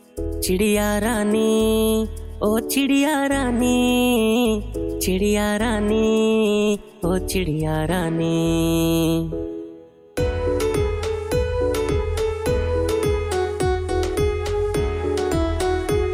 चिड़िया रानी ओ चिड़िया रानी, चिड़िया रानी ओ चिड़िया रानी।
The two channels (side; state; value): both; identical; correlation 1.00